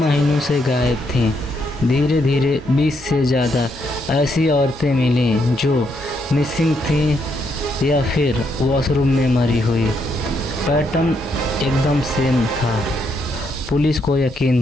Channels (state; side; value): normal; both; correlation 0.76